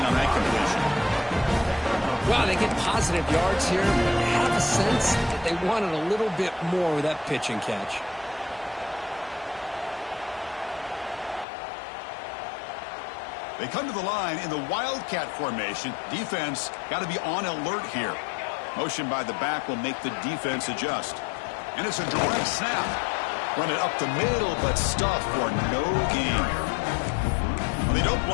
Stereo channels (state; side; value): drops out; right; at 11.5 s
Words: on that completion. Wow, they get positive yards here, but you have a sense that they wanted a little bit more with that pitch and catch. They come to the line in the Wildcat formation. Defense got to be on alert here. Motion by the back will make the defense adjust. And it's a direct snap. Run it up the middle, but stuffed for no gain. They don't